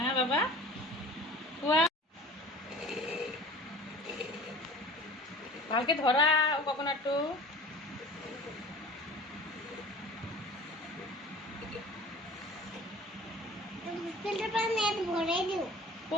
বাবা খোৱা ভালকে ধৰা কোকোনাটটো ফিল্টার পানি ভরে দিও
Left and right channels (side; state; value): both; normal; correlation 0.42